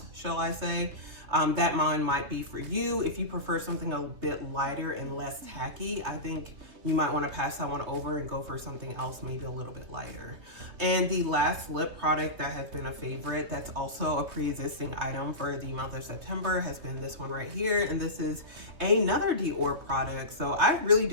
shall I say, that one might be for you. If you prefer something a bit lighter and less tacky, I think you might want to pass that one over and go for something else, maybe a little bit lighter. And the last lip product that has been a favorite, that's also a pre-existing item for the month of September, has been this one right here. And this is another Dior product. So I really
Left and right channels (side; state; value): left; late; 3.0 ms